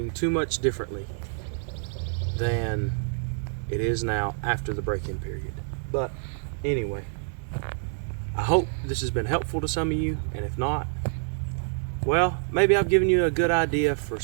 too much differently than it is now after the break-in period. But anyway, I hope this has been helpful to some of you, and if not, well, maybe I've given you a good idea for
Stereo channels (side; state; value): left; silent; digital silence